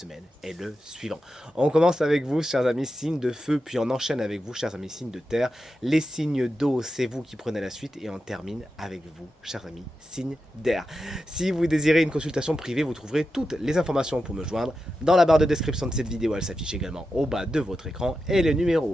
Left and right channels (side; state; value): both; normal; correlation 0.90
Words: est le suivant. On commence avec vous, chers amis, signes de feu, puis on enchaîne avec vous, chers amis, signes de terre. Les signes d'eau, c'est vous qui prenez la suite, et on termine avec vous, chers amis, signes d'air. Si vous désirez une consultation privée, vous trouverez toutes les informations pour me joindre dans la barre de description de cette vidéo. Elle s'affiche également au bas de votre écran et le